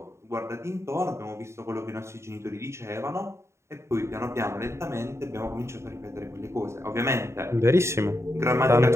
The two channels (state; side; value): late; left; 0.13 ms